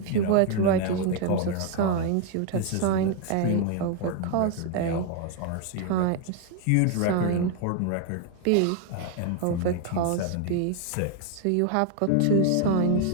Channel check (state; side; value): different; both; correlation 0.01